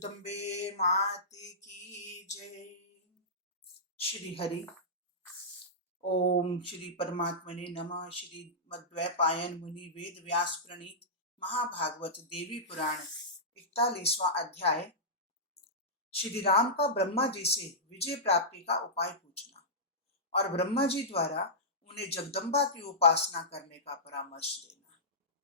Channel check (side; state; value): both; normal; correlation -0.15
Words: माते की जय। श्री हरि ओम श्री परमात्मने नमः। श्री मद्वैपायन मुनि वेद व्यास प्रणीत महाभागवत देवी पुराण 41वां अध्याय। श्री राम का ब्रह्मा जी से विजय प्राप्ति का उपाय पूछना और ब्रह्मा जी द्वारा उन्हें जगदम्बा की उपासना करने का परामर्श देना।